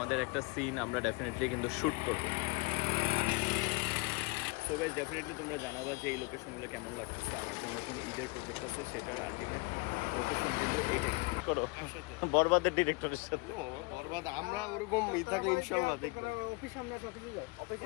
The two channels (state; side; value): quieter; right; 27.6 dB